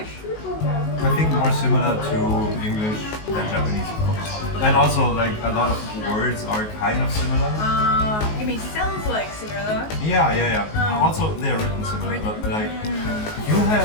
I think more similar to English than Japanese, of course. And also, like, a lot of words are kind of similar. You mean sounds like similar? Yeah. Also, they're written similar, but like, you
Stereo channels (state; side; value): late; right; 19 ms